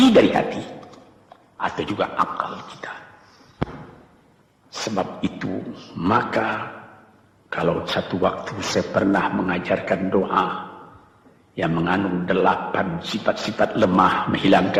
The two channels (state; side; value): identical; both; correlation 1.00